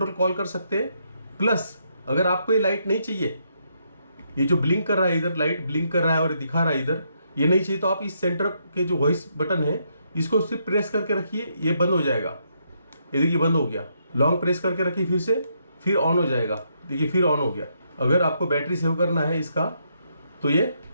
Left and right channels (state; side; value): inverted; both; correlation -0.77